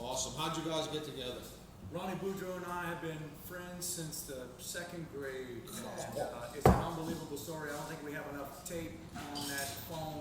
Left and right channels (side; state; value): both; identical; correlation 1.00